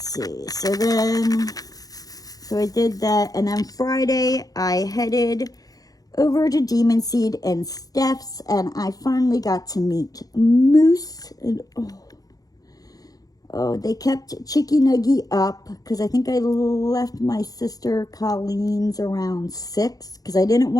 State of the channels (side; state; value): right; late; 0.18 ms